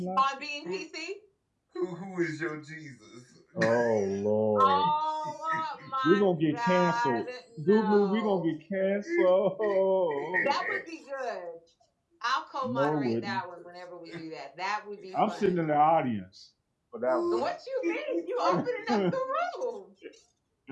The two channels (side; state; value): both; identical; correlation 1.00